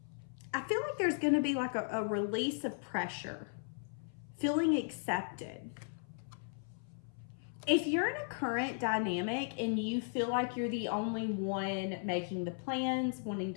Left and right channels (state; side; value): silent; right; 53 dB below the other